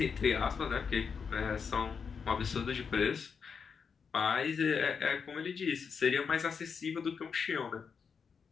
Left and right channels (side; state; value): right; quieter; 6.0 dB